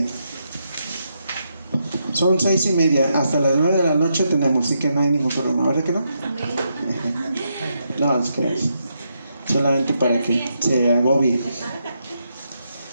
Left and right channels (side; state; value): both; inverted; correlation -0.81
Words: Son 6:30, hasta las 9 de la noche tenemos, así que no hay ningún problema, ¿verdad que no? No, es que solamente para que se agobie.